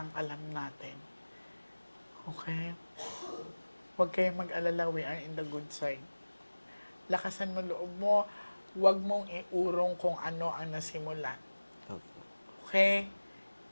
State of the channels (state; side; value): inverted; both; correlation -1.00